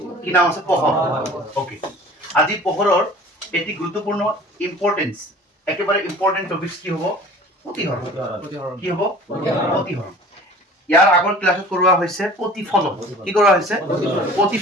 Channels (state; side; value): normal; both; correlation 0.45